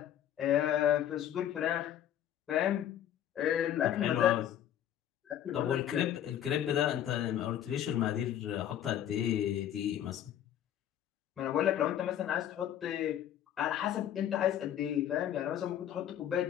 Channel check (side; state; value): right; quieter; 10.7 dB